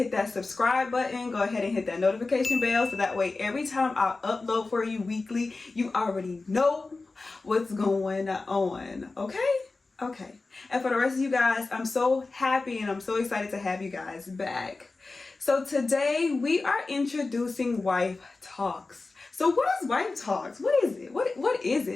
that subscribe button. Go ahead and hit that notification bell so that way every time I upload for you weekly, you already know what's going on. Okay. And for the rest of you guys, I'm so happy and I'm so excited to have you guys back. So today we are introducing wife talks. So what is wife talks? What is it? What is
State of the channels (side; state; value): right; quieter; 3.6 dB